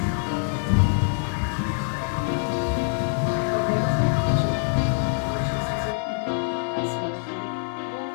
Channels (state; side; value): silent; right; 56 dB below the other